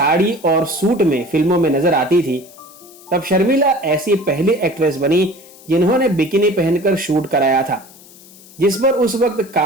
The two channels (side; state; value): left; noise; hiss, 22 dB below the sound